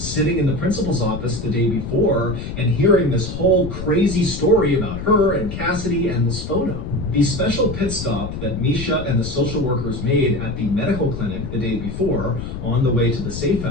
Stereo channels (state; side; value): noise; left; rumble, 7 dB below the sound